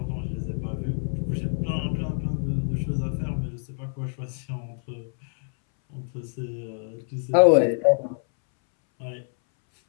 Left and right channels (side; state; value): right; silent; 60 dB below the other